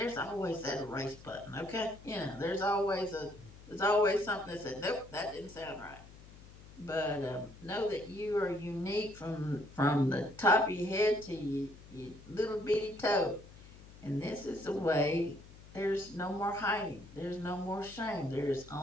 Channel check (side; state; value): left; noise; hum, 19 dB below the sound